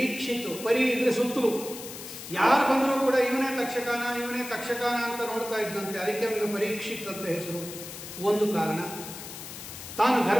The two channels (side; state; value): left; noise; hiss, 11 dB below the sound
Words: ಈಕ್ಷಿತ್ತು. ಪರಿ ಇದ್ರೆ ಸುತ್ತಲೂ ಯಾರು ಬಂದರೂ ಕೂಡ ಇವನೇ ತಕ್ಷಕನ ಅಂತ ನೋಡ್ತಾ ಇದ್ದಂತೆ. ಅದಕ್ಕೆ ಅವನಿಗೆ ಪರೀಕ್ಷಿತ್ ಅಂತ ಹೆಸರು. ಒಂದು ಕಾರಣ. ತಾನು